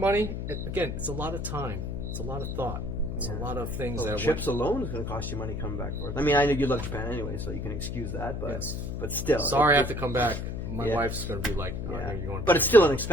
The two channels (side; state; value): left; noise; hum, 4 dB below the sound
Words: Again, it's a lot of time. It's a lot of thought. It's a lot of things Well, that trips alone is going to cost you money coming back forth. I mean, I know you love Japan anyway, so you can excuse that. But but still, Sorry, I have to come back. My wife's going to be like, you're going. But it's still an